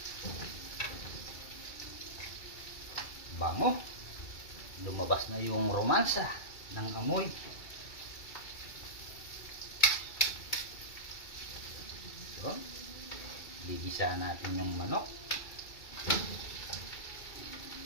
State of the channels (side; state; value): right; late; 2.3 ms